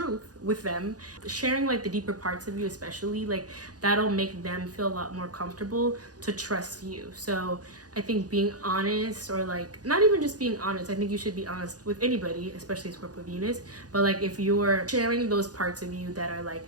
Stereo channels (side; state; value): left; late; 0.68 ms